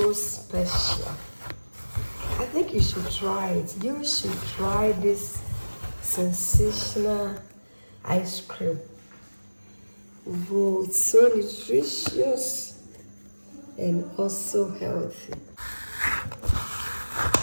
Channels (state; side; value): inverted; both; correlation -1.00